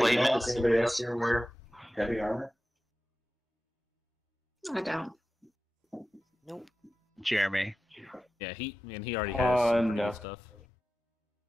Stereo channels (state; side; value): normal; both; correlation 0.93